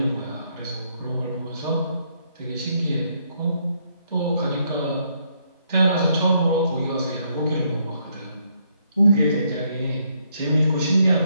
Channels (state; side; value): inverted; both; correlation -0.73